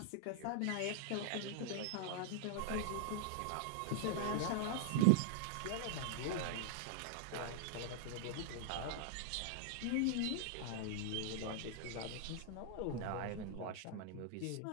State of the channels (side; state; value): both; different; correlation -0.01